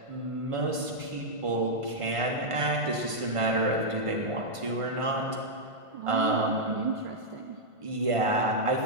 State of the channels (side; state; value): left; late; 1.5 ms